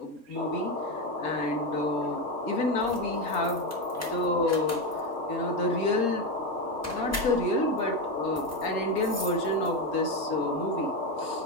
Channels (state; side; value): normal; both; correlation 0.13